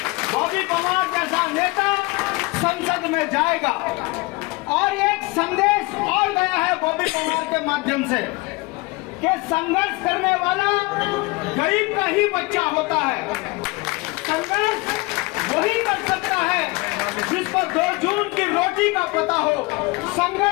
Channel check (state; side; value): quieter; right; 24.5 dB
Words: बॉबी पवार जैसा नेता संसद में जाएगा। और एक संदेश और गया है बॉबी पवार के माध्यम से कि संघर्ष करने वाला गरीब का ही बच्चा होता है। संघर्ष वही कर सकता है जिस पर 2 जून की रोटी का पता हो।